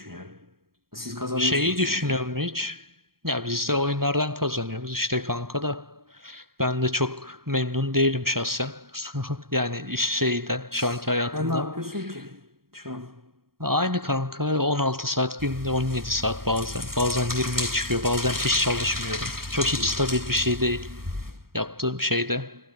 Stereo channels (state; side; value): late; left; 0.93 ms